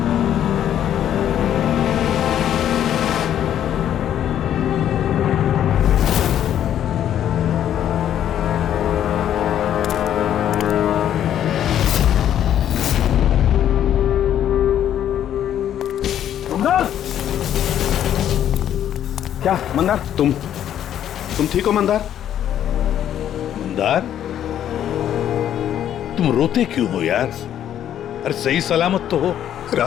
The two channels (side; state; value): right; quieter; 10.5 dB